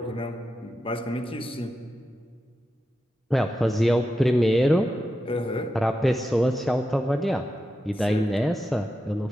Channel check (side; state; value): both; normal; correlation 0.89